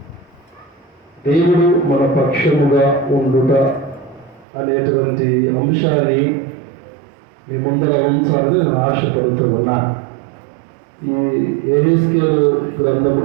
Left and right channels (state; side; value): drops out; left; at 4.5 s